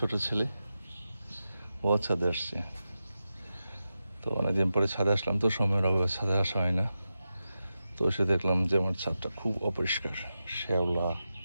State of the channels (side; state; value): both; inverted; correlation -0.91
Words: ছেলে, ও ছাদে আসছে। তো অনেকদিন পরে ছাদে আসলাম, তো সময়ের অভাবে ছাদে আসা হয় না। তো এসে দেখলাম যে আমার ছাদটা খুব অপরিষ্কার, শ্যাওলা,